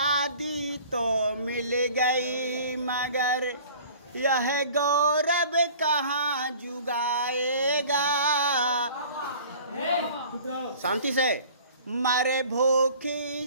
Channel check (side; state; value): both; inverted; correlation -0.46